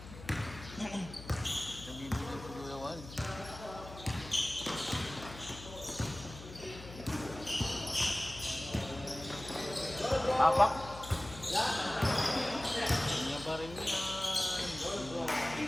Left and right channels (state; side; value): noise; left; hum, 14 dB below the sound